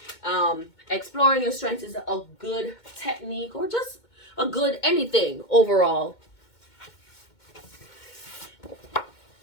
exploring your strengths is a good technique, or just a good anything overall.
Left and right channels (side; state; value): right; late; 2.2 ms